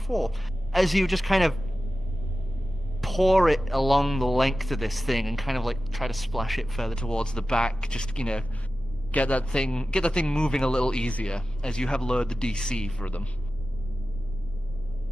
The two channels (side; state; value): both; normal; correlation 0.95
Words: as you just kind of pour it along the length of this thing and kind of like try to splash it further towards the back, just, get that thing moving a little easier as you have lowered the DC for them.